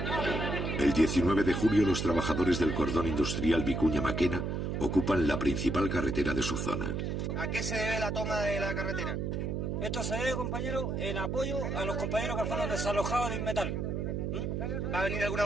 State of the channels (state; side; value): noise; right; hum, 1 dB below the sound